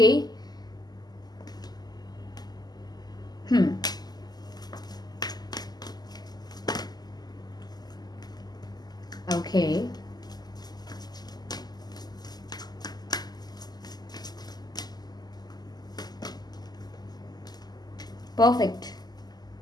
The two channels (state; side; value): late; right; 0.20 ms